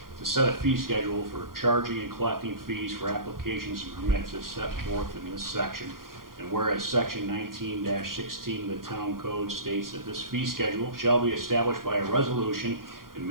to set a fee schedule for charging and collecting fees for applications and permits as set forth in this section. And whereas section 19-16 of the town code states that this fee schedule shall be established by a resolution and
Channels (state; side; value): late; left; 0.92 ms